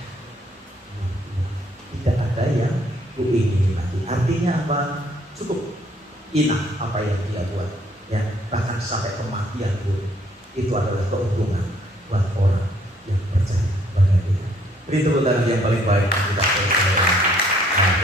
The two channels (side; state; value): both; normal; correlation 0.64